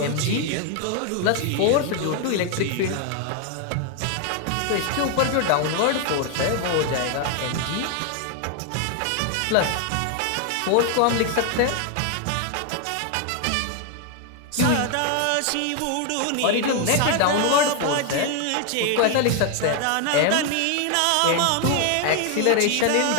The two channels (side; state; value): both; different; correlation 0.01